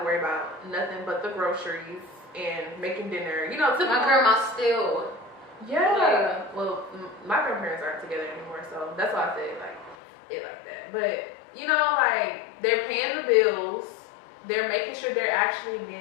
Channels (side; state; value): right; drops out; at 10.0 s